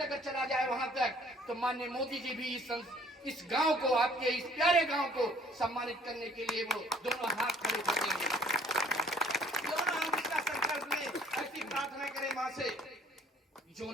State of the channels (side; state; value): both; normal; correlation 0.56